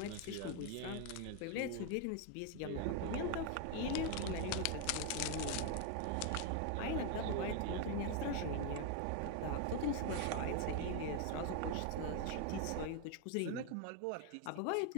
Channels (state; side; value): different; both; correlation 0.01